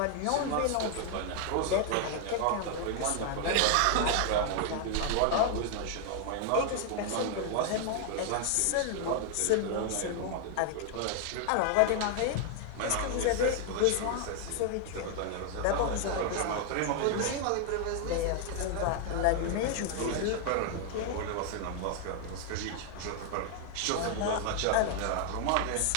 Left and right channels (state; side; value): different; both; correlation 0.00